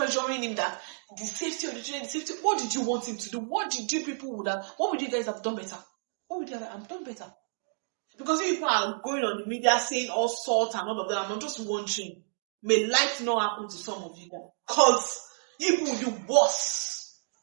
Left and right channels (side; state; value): left; silent; digital silence